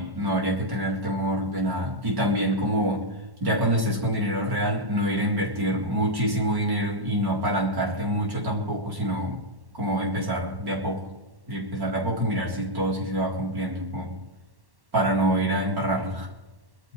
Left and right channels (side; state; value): left; late; 1.1 ms